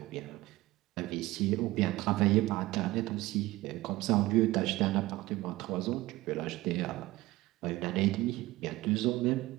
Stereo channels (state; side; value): quieter; left; 18.5 dB